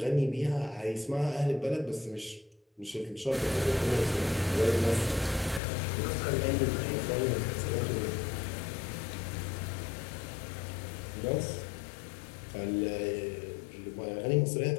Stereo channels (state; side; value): drops out; right; at 5.6 s